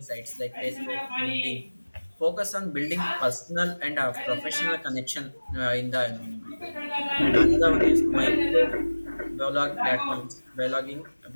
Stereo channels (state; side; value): inverted; both; correlation -1.00